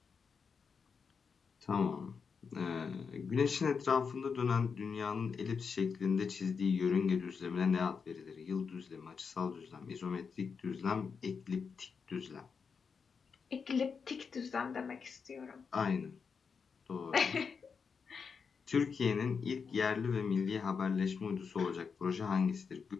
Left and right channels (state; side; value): quieter; right; 5.7 dB